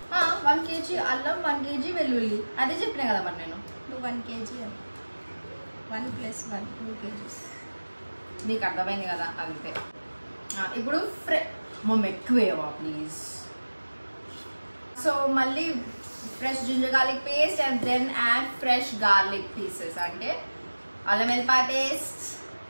1 kg అల్లం, 1 kg వెల్లుల్లి. అదే చెప్పినా కదా మరి నేను. 1 kg 1 + 1 2 kgs. నీకు అర్థమైంది కదా అంతే. ఇప్పుడు మమ్మీ ఎక్కువేవా ప్లీజ్. సో మళ్ళీ fresh ginger garlic paste and then add fresh garlic pieces, అంటే అల్లం వెల్లిపాయ పేస్ట్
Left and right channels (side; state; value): both; inverted; correlation -1.00